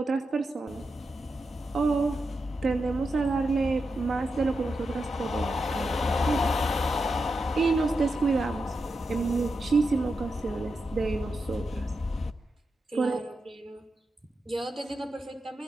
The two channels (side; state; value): both; normal; correlation 0.87